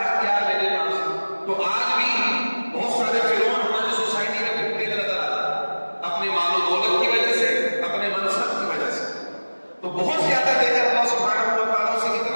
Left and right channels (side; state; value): both; inverted; correlation -1.00